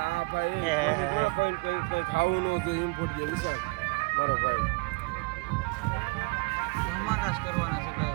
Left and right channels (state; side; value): quieter; left; 28.2 dB